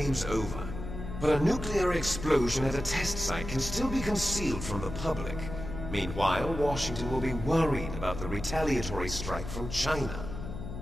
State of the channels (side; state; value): left; noise; hum, 8 dB below the sound